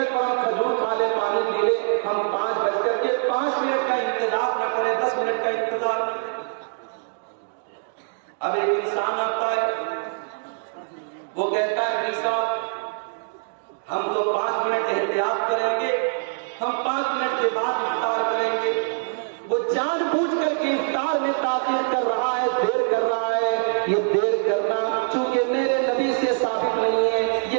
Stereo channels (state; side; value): silent; left; digital silence